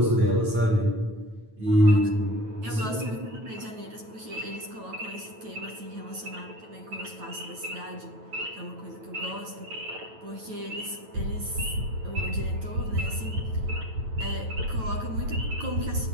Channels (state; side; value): late; left; 9.1 ms